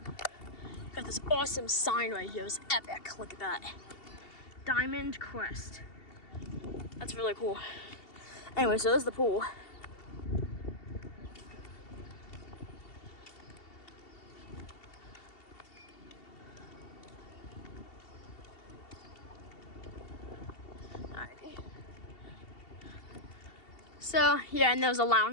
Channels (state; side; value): late; right; 2.7 ms